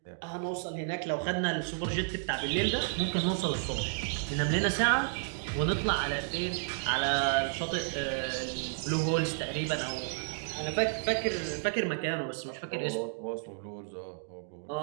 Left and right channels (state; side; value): silent; left; digital silence